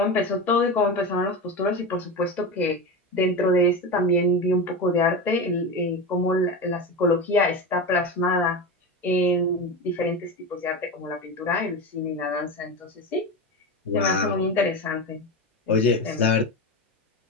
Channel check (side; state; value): both; normal; correlation 0.21